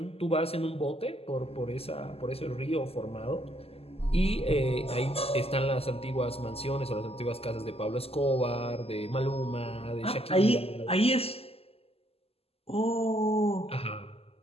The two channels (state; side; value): late; right; 0.29 ms